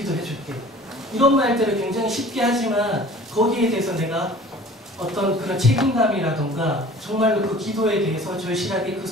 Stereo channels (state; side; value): normal; both; correlation 0.46